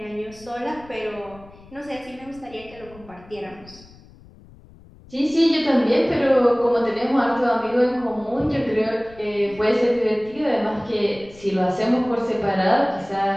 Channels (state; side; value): noise; left; rumble, 23 dB below the sound